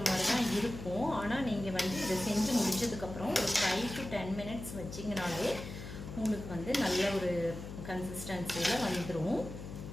மாதிரி தான் இருக்கும். ஆனால் நீங்கள் வந்து இதை செஞ்சு முடிச்சதுக்கப்புறம் ஒரு 5 to 10 minutes வச்சிங்கனாலே உங்களுக்கு வந்து நல்ல ஒரு கன்சிஸ்டன்சியில் வந்துடும்.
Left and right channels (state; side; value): noise; left; hum, 10 dB below the sound